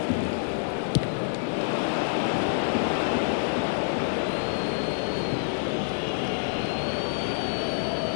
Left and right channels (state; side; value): silent; right; digital silence